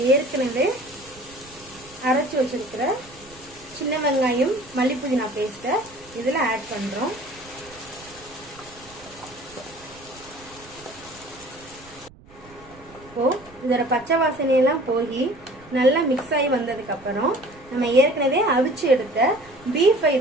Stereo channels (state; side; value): noise; right; rumble, 24 dB below the sound